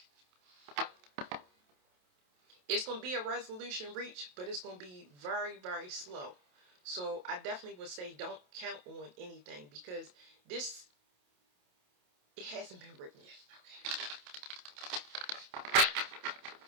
It's going to be a resolution reached, but it's going to be very, very slow. So I definitely would say don't count on anything because this, it hasn't been written yet.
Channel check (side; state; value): left; late; 28 ms